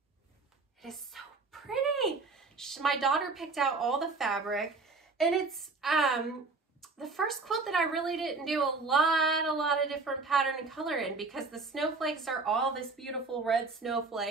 It is so pretty. My daughter picked out all the fabric, and it's the first quilt that I really didn't do a lot of different pattern and color in, because the snowflakes are all this beautiful red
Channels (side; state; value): left; quieter; 4.0 dB